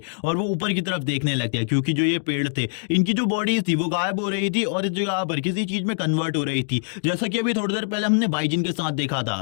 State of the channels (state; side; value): silent; right; digital silence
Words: और वो ऊपर की तरफ देखने लगते हैं क्योंकि जो ये पेड़ थे इनकी जो बॉडीज थी वो गायब हो रही थी और इस जगह पर किसी चीज में कन्वर्ट हो रही थी, जैसा कि अभी थोड़ी देर पहले हमने बाइजिन के साथ देखा